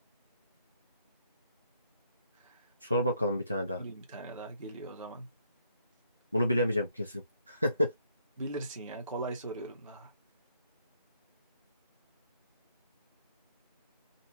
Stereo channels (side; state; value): both; inverted; correlation -0.70